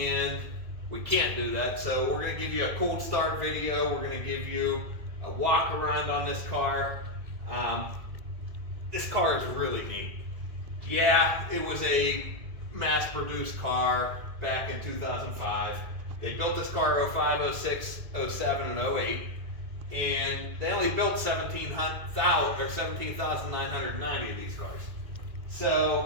we can't do that. So we're going to give you a cold start video. We're going to give you a walk around on this car. This car is really neat. Yeah, it was a mass-produced car back in 2005. They built this car 05, 06, 07, and 08, and they only built 17,990 of these cars.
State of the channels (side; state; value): left; late; 2.0 ms